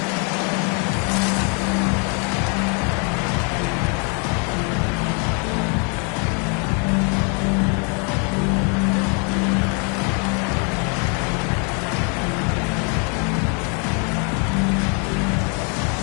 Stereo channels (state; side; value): quieter; right; 37.4 dB